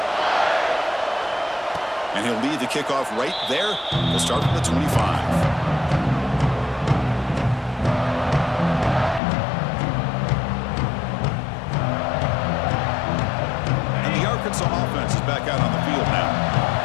And he'll lead the kickoff right there. He'll start from the 25. And the Arkansas offense is back out on the field now.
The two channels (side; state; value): right; drops out; at 9.2 s